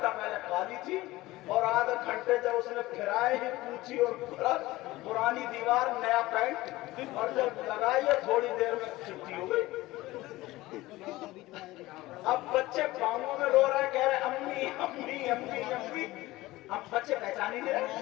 پہلے کالی تھی اور آدھا گھنٹے جب اس نے پھرائے ہی پوچھی اور پرانی دیوار نیا پینٹ اور جب لگائی ہے تھوڑی دیر میں چٹی ہو گئی۔ اب بچے پاؤں میں رو رہے ہیں، کہہ رہے امی امی امی امی، اب بچے پہچان ہی نہیں رہے،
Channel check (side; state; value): right; quieter; 18.5 dB